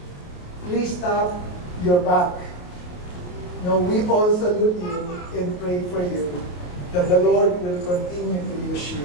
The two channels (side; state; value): right; late; 28 ms